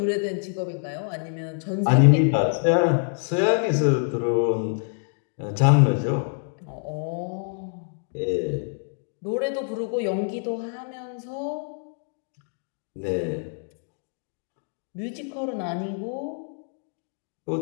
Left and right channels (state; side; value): silent; right; 61 dB below the other